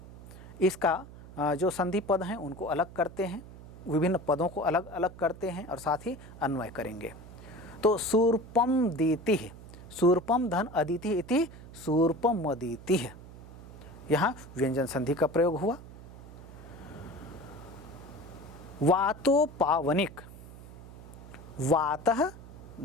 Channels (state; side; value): noise; right; hum, 16 dB below the sound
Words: इसका जो संधि पद हैं उनको अलग करते हैं, विभिन्न पदों को अलग अलग करते हैं और साथ ही अन्वय करेंगे। तो शूर्पम दीति, शूर्पम धन अदिति इति शूर्पम अदिति, यहाँ व्यंजन संधि का प्रयोग हुआ। वातो पावनिक, वातः